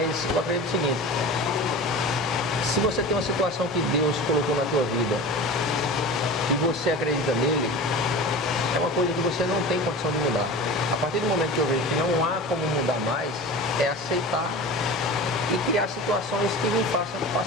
eu acredito o seguinte, se você tem uma situação que Deus colocou na tua vida e você acredita nele, é uma coisa que você não tem condição de mudar. A partir do momento que eu vejo que não há como mudar mais, é aceitar e criar situações que me façam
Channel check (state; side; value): normal; both; correlation 0.33